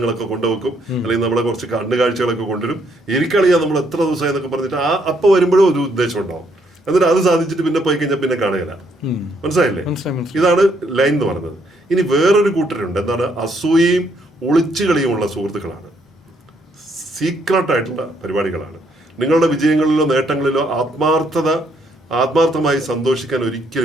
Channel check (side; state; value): both; normal; correlation 0.71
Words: കൊണ്ടുവെക്കും. അല്ലെങ്കിൽ നമ്മളെ കുറച്ച് കണ്ണുകാഴ്ചകളൊക്കെ കൊണ്ടുവരും. എനിക്കറിയാം നമ്മൾ എത്ര ദിവസമായി എന്നൊക്കെ പറഞ്ഞിട്ട് അപ്പം വരുമ്പോഴും ഒരു ഉദ്ദേശം ഉണ്ടാവും. എന്നിട്ട് അത് സാധിച്ചിട്ട് പിന്നെ പോയി കഴിഞ്ഞാൽ പിന്നെ കാണുകയില്ല. മനസ്സിലായില്ലേ? ഇതാണ് ലൈൻ എന്ന് പറയുന്നത്. ഇനി വേറൊരു കൂട്ടരുണ്ട്. എന്താണ്? അസൂയയും ഒളിച്ചുകളിയുമുള്ള സുഹൃത്തുക്കളാണ്. സീക്രട്ട് ആയിട്ടുള്ള പരിപാടികളാണ്. നിങ്ങളുടെ വിജയങ്ങളിലോ നേട്ടങ്ങളിലോ ആത്മാർത്ഥമായി സന്തോഷിക്കാൻ